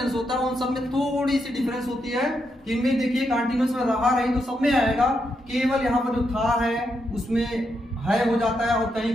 होता है उन सब में थोड़ी सी डिफरेंस होती है। इनमें देखिए, कंटीन्यूअस में रहा रही तो सब में आएगा, केवल यहाँ पर जो था है उसमें है हो जाता है और कहीं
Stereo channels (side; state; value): both; normal; correlation 0.82